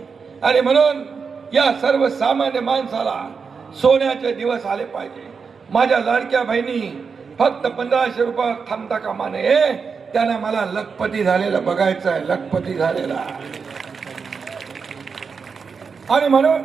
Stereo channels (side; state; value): left; quieter; 5.5 dB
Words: आणि म्हणून या सर्वसामान्य माणसाला सोन्याचे दिवस आले पाहिजे. माझ्या लाडक्या बहिणी फक्त 1500 रुपये थांबता कामा नये, त्यांना मला लखपती झालेलं बघायचं आहे, लखपती झालेला. आणि म्हणून